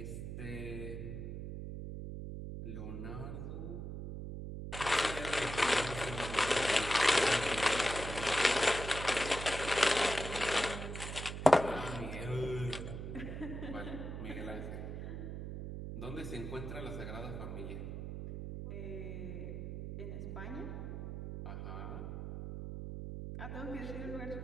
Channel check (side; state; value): right; noise; hum, 6 dB below the sound